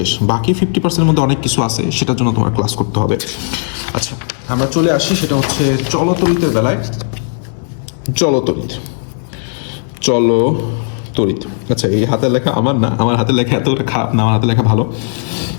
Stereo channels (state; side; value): silent; right; digital silence